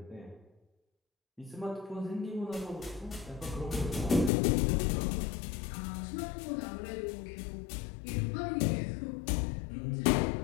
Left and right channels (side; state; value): right; drops out; at 4.3 s